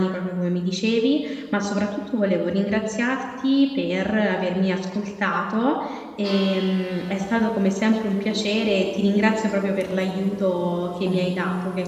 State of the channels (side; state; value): both; identical; correlation 1.00